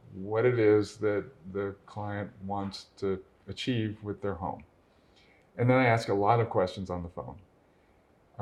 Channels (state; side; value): identical; both; correlation 1.00